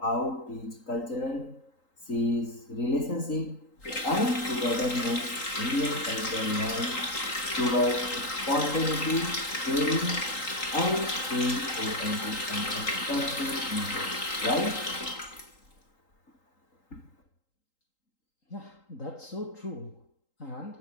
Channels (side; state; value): right; late; 3.8 ms